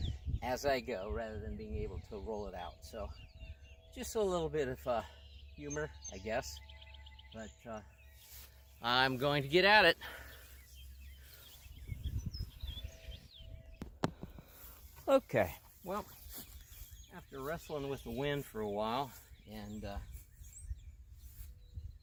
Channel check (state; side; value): identical; both; correlation 1.00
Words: as I go, rather than being able to roll it out. So just a little bit of humor, I guess. But I'm going to get at it. Okay, well, after wrestling with the wind for a while and